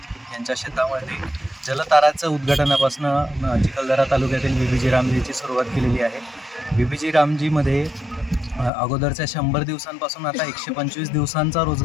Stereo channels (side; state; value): right; drops out; at 8.7 s